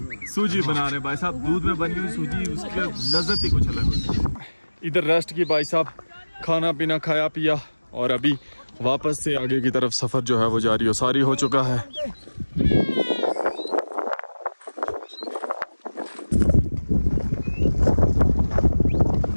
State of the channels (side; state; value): both; inverted; correlation -1.00